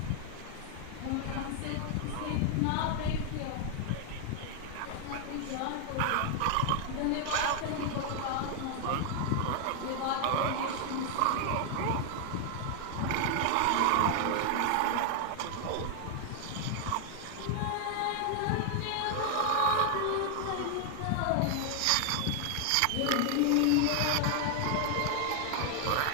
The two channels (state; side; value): different; both; correlation 0.00